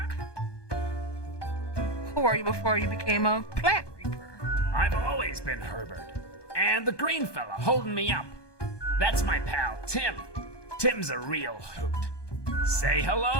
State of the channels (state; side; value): late; right; 1.2 ms